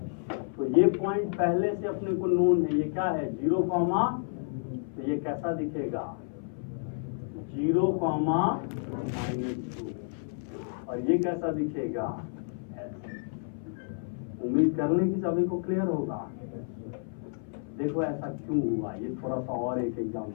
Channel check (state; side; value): silent; right; 58 dB below the other